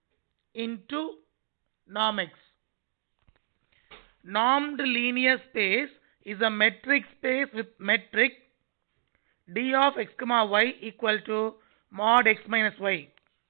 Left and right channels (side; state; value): left; silent; digital silence